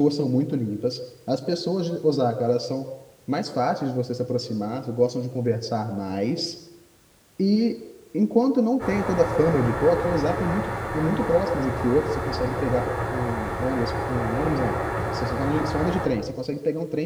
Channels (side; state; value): both; identical; correlation 1.00